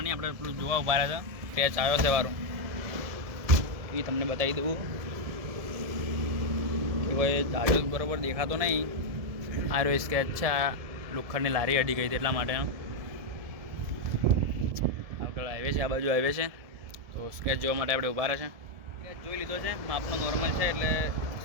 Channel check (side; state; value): left; late; 1.7 ms